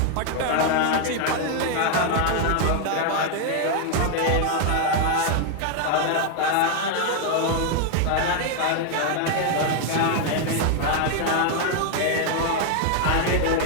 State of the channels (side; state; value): both; different; correlation 0.00